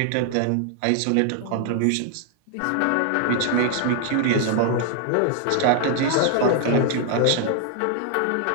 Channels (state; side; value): different; both; correlation 0.00